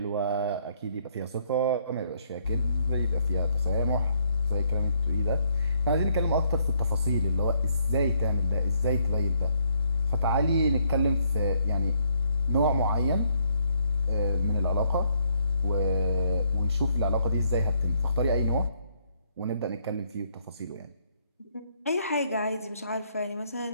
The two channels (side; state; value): both; inverted; correlation -0.71